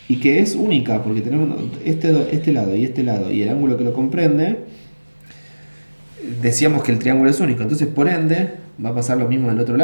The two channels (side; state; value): both; inverted; correlation -1.00